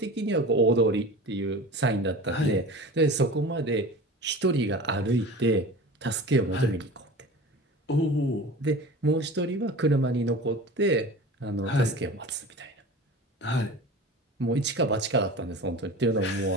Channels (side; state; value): both; normal; correlation 0.36